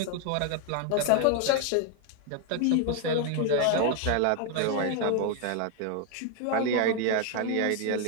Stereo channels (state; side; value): different; both; correlation 0.01